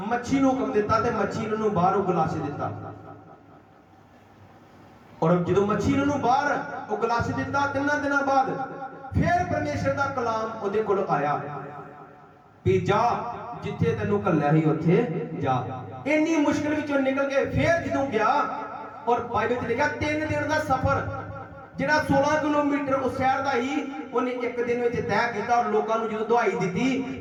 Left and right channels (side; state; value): both; identical; correlation 1.00